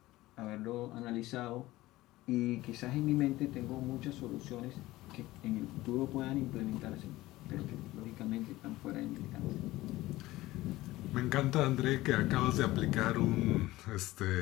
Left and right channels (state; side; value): quieter; right; 17.7 dB